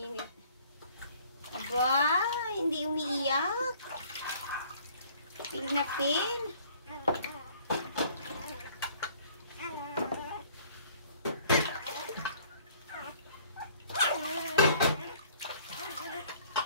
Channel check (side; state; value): both; inverted; correlation -0.56